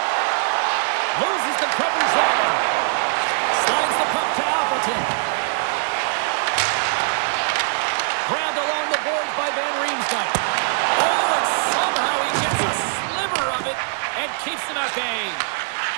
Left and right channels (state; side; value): silent; left; 64 dB below the other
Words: Loses the coverage there. Slides the puck to Appleton. Grabbed along the boards by Van Riemsdyk. Oh, and somehow he gets a sliver of it and keeps him at bay.